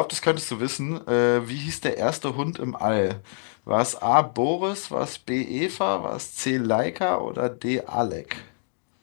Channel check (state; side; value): silent; right; digital silence